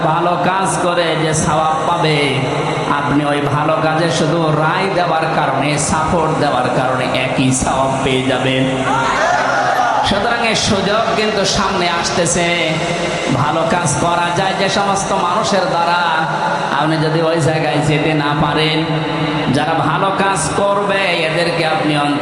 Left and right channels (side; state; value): both; identical; correlation 1.00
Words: ভালো কাজ করে যে সওয়াব পাবে, আপনি ওই ভালো কাজে শুধু রায় দেওয়ার কারণে, সাপোর্ট দেওয়ার কারণে একই সওয়াব পেয়ে যাবেন। সুতরাং এই সুযোগ কিন্তু সামনে আসতেছে। ভালো কাজ করা যায় যে সমস্ত মানুষের দ্বারা, আপনি যদি ওই জায়গায় যেতে না পারেন, যারা ভালো কাজ করবে এদেরকে আপনি